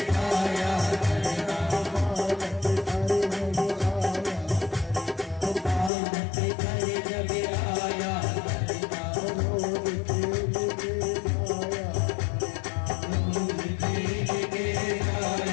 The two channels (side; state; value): right; drops out; at 5.9 s